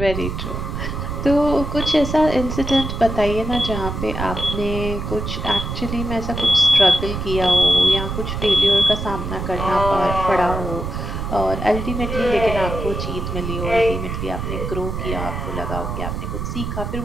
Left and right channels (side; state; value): right; noise; rumble, 4 dB below the sound